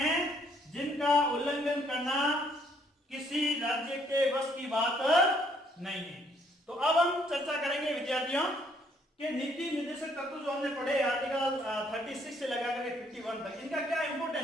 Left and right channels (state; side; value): normal; both; correlation 0.66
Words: जिनका उल्लंघन करना किसी राज्य के वश की बात नहीं है। तो अब हम चर्चा करेंगे विद्यार्थियों कि नीति निर्देशक तत्व जो हमने पढ़े आर्टिकल 36 से लगा करके 51 तक, इनका क्या